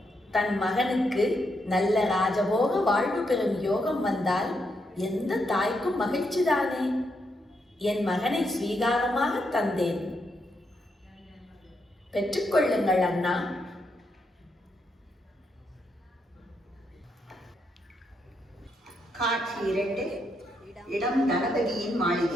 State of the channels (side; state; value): both; normal; correlation 0.80